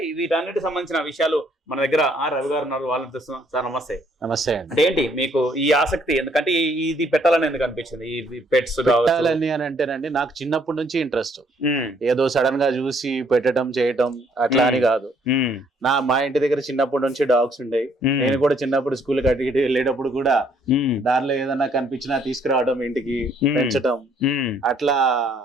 వీటన్నిటికి సంబంధించిన విషయాలు మన దగ్గర రవి గారు ఉన్నారు, వాళ్ళని తెలుస్తున్నాం. సార్ నమస్తే. నమస్తే. అంటే ఏంటి మీకు ఈ ఆసక్తి, ఎందుకంటే ఇది పెట్టాలని ఎందుకు అనిపించింది? ఈ పెట్స్ పెట్టాలని అని అంటేనండి, నాకు చిన్నప్పటి నుంచి ఇంట్రెస్ట్. ఏదో సడన్ గా చూసి పెట్టడం చేయటం అట్లా అని కాదు. మా ఇంటి దగ్గర చిన్నప్పటి నుంచి డాగ్స్ ఉండేవి. నేను కూడా చిన్నప్పుడు స్కూల్ కట్టి వెళ్ళేటప్పుడు కూడా దానిలో ఏదన్నా కనిపించినా తీసుకురావడం, ఇంటికి పెంచడం, అట్లా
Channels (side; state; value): both; normal; correlation 0.66